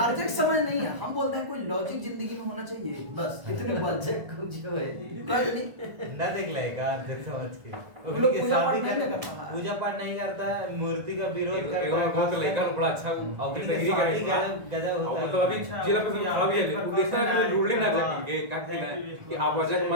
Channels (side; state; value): left; late; 1.5 ms